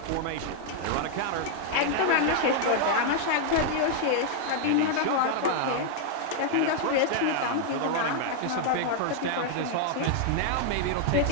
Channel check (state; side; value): different; both; correlation 0.00